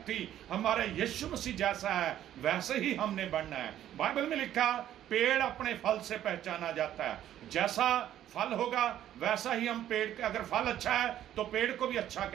थी। हमारे यीशु मसीह जैसा है वैसे ही हमने बनना है। बाइबल में लिखा पेड़ अपने फल से पहचाना जाता है, जैसा फल होगा वैसा ही हम पेड़ के, अगर फल अच्छा है तो पेड़ को भी अच्छा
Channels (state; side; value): quieter; left; 11.7 dB